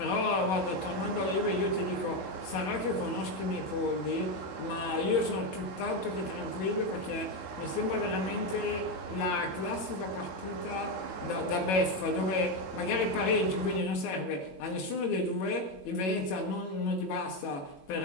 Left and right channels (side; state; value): right; late; 21 ms